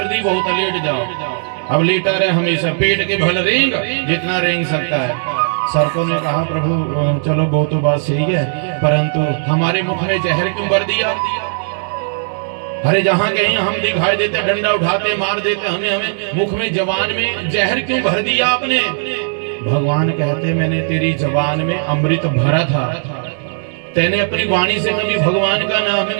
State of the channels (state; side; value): silent; left; digital silence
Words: बहुत है लेट जाओ। अब लेटा रहे हमेशा, पेट के भल रेंग जितना रेंग सकता है। सर्पों ने कहा प्रभु चलो वो तो बात सही है, परंतु हमारे मुख में जहर क्यों भर दिया? अरे जहां कहीं हम दिखाई देते, डंडा उठाते मार देते, हमें मुख में जबान में जहर क्यों भर दिया आपने? भगवान कहते मैंने तेरी जबान में अमृत भरा था, तेने अपनी वाणी से कभी भगवान का नाम